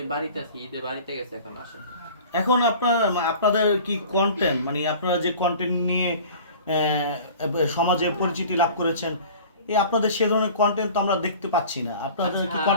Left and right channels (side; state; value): both; inverted; correlation -0.43